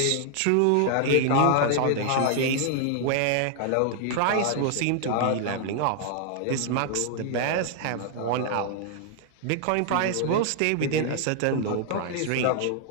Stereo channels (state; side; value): different; both; correlation 0.00